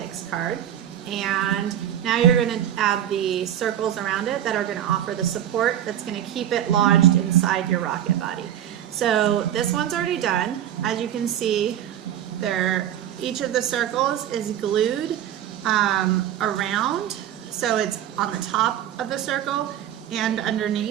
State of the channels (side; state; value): left; quieter; 10.9 dB